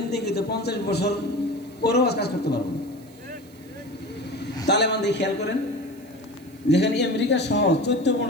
50 বছর পরেও কাজ করতে পারবো না। তালেবান দিয়ে খেয়াল করেন, যেখানে আমেরিকা সহ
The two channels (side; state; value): right; noise; hiss, 27 dB below the sound